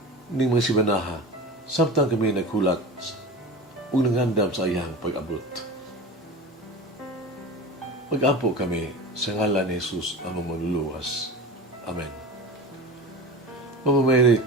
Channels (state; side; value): normal; both; correlation 0.31